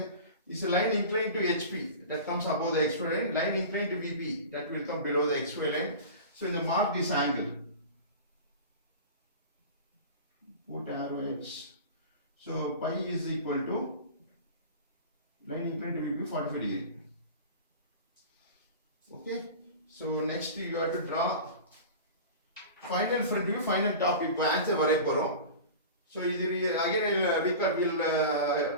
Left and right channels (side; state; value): both; inverted; correlation -0.33